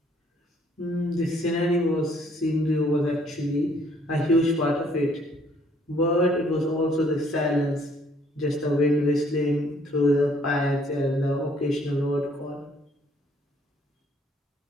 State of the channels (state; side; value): normal; both; correlation 0.64